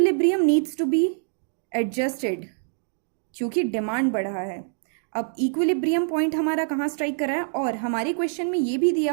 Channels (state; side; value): silent; left; digital silence